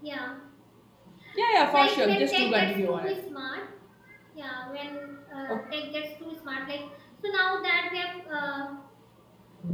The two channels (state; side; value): identical; both; correlation 1.00